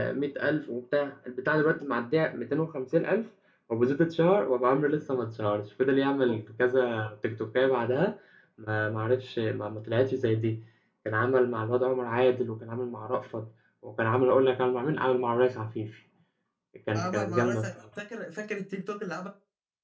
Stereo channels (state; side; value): identical; both; correlation 1.00